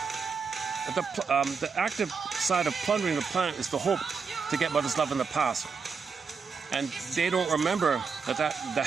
The active side of plundering the planet is the hope to get mother's love in the past. And they don't remember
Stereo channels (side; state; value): left; quieter; 5.5 dB